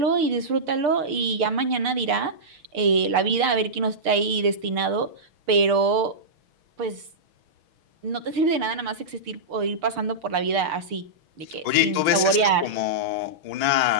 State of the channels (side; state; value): left; late; 6.8 ms